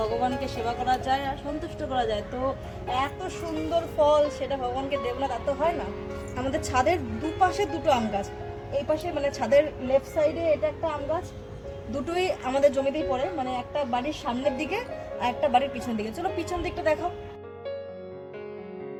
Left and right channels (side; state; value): both; identical; correlation 1.00